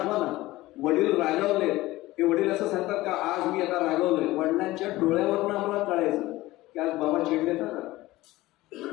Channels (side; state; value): right; quieter; 18.0 dB